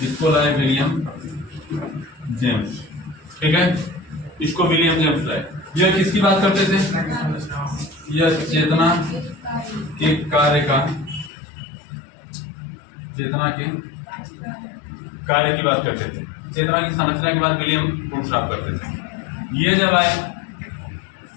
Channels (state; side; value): drops out; right; at 11.3 s